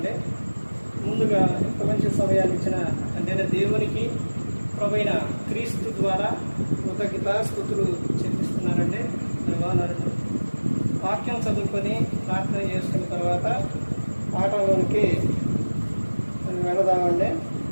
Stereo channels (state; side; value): inverted; both; correlation -1.00